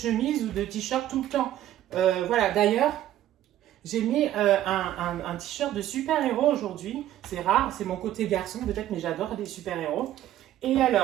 ou de t-shirt tout le temps. Voilà, d'ailleurs, j'ai mis un t-shirt de super-héros aujourd'hui. C'est rare, c'est mon côté garçon peut-être, mais j'adore les super-héros. Et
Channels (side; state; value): left; quieter; 12.8 dB